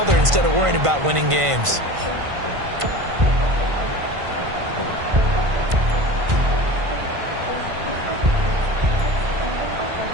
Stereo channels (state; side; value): late; left; 1.5 ms